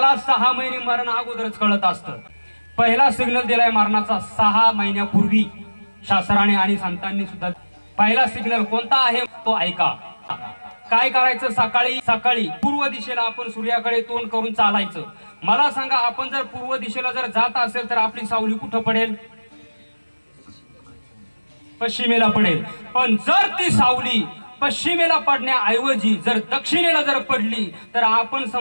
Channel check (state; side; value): inverted; both; correlation -1.00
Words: 6 महिने मरण अगोदरच कळत असतं. पहिला सिग्नल दिलाय मरणाचा 6 महिन्यापूर्वी शास्त्राने आणि संतांनी सुद्धा. पहिला सिग्नल कोणता आहे तो ऐका. काय करायचं, सकाळी सकाळी पूर्व दिशेला आपण सूर्याकडे तोंड करून चालायचं. मला सांगा, आपण जर पूर्व दिशेला जर जात असेल तर आपली सावली कुठं पडेल? पश्चिमेला पडेल. पण जर ती सावली पश्चिमेला पडण्याऐवजी जर दक्षिणेला जर पडली तर आपण